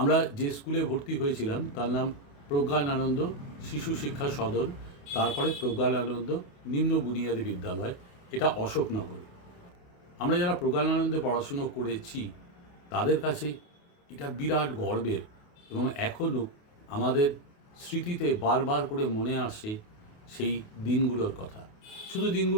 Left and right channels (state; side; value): late; right; 28 ms